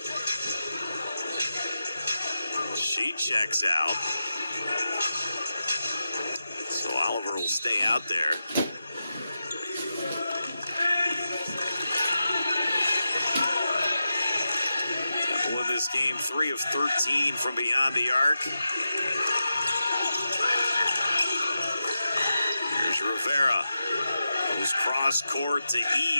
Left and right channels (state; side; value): inverted; both; correlation -0.89